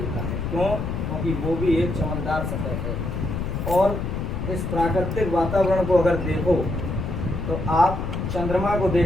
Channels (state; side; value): noise; left; rumble, 3 dB below the sound